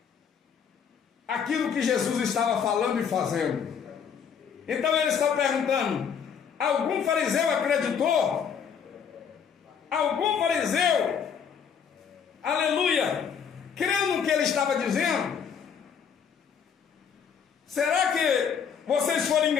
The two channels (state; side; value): quieter; right; 7.2 dB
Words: aquilo que Jesus estava falando e fazendo. Então ele está perguntando: algum fariseu acreditou? Algum fariseu, aleluia, creu no que ele estava dizendo? Será que vocês foram